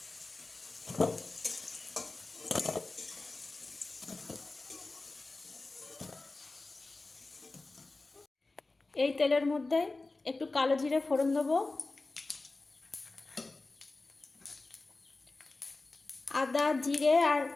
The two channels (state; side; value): quieter; right; 3.3 dB